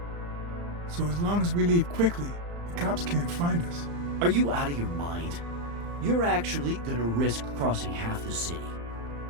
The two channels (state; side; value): late; left; 35 ms